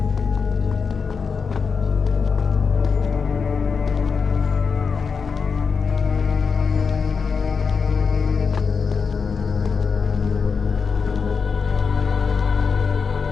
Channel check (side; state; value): right; quieter; 5.5 dB